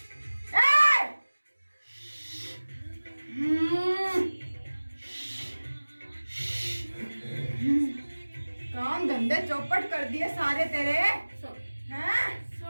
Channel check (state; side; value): inverted; both; correlation -1.00